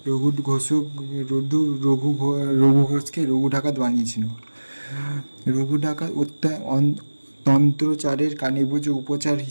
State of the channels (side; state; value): both; inverted; correlation -1.00